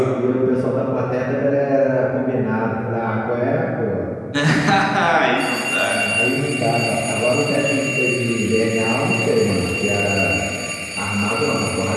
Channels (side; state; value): both; identical; correlation 1.00